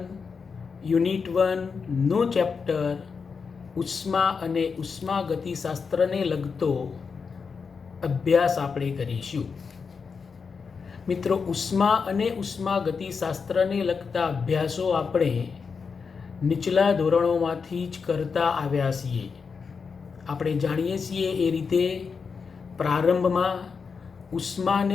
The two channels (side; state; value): right; quieter; 5.5 dB